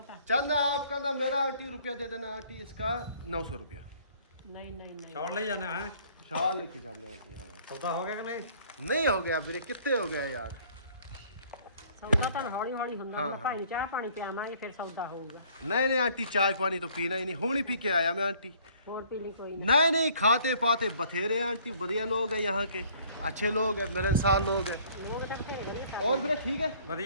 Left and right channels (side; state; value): both; inverted; correlation -0.58